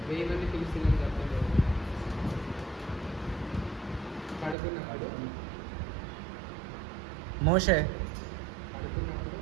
మంది పిలిచిందని చెప్పండి. పడుకున్నప్పుడు మోషే. పడుకున్నప్పుడు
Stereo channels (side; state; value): left; drops out; at 4.5 s